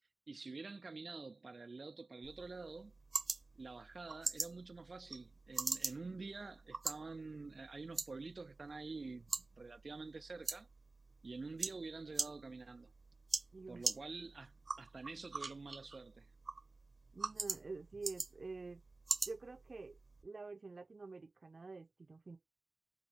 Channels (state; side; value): quieter; left; 3.4 dB